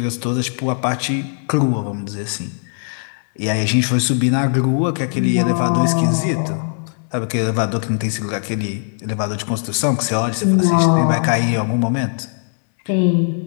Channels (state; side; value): silent; right; 63 dB below the other